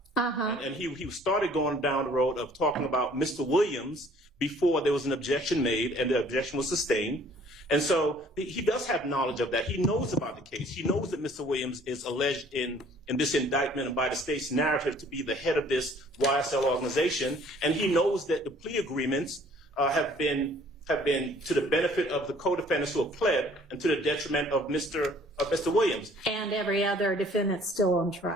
And he started going down the road of talking about Mr. Williams before there was an objection made and the objection was sustained. And so he does have knowledge of that. He knows about the case. He knows that Mr. Williams is alleged in this indictment and by the state's narrative to be the head of this YSL organization. And he knows that the plea agreements have been to the benefit of the co-defendants who have pled and to the detriment of Mr. Williams. And every other defendant still on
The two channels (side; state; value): both; normal; correlation 0.56